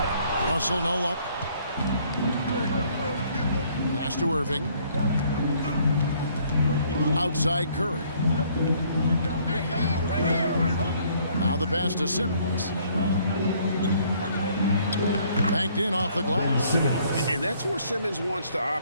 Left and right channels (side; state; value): both; inverted; correlation -0.63